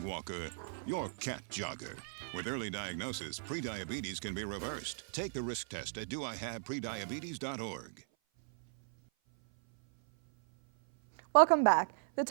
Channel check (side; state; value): left; silent; 53 dB below the other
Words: walker, your cat jogger. With early diagnosis, prediabetes can be reversed. Take the risk test at doihaveprediabetes.org. Welcome back. The